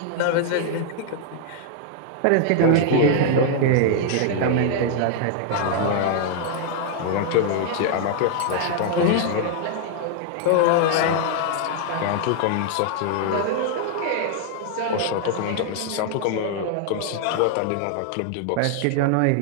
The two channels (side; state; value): both; different; correlation 0.00